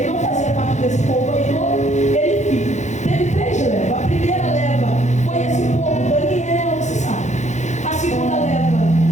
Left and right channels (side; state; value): right; late; 0.34 ms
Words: não fazia parte desse povo aí todo. Ele teve 3 levas. A primeira leva foi esse povo, Daniel, você sabe. A segunda leva